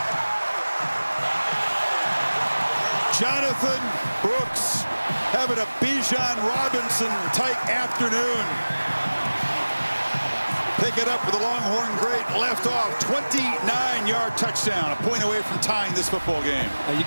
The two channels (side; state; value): both; inverted; correlation -1.00